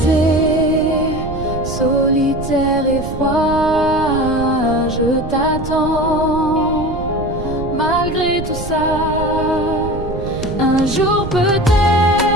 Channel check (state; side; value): noise; right; rumble, 8 dB below the sound